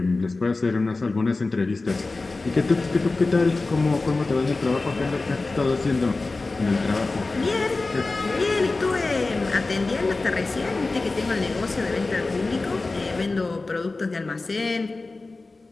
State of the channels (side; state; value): right; quieter; 3.5 dB